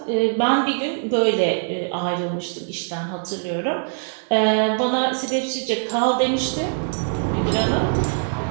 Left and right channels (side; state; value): left; silent; digital silence